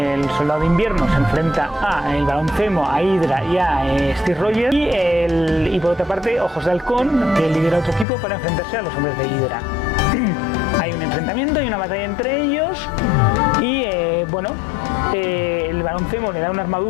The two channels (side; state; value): right; drops out; at 8.1 s